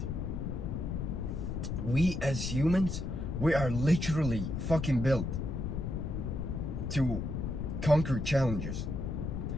We as humans, we are literally fucking built to conquer challenges.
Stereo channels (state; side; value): noise; left; rumble, 3 dB below the sound